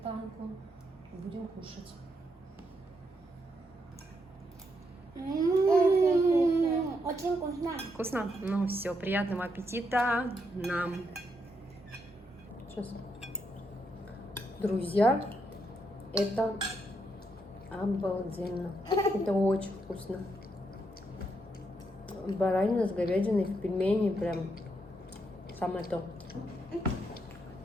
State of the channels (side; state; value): both; normal; correlation 0.79